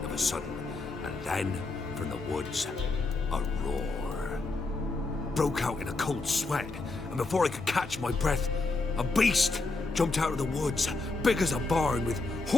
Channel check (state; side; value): quieter; right; 3.5 dB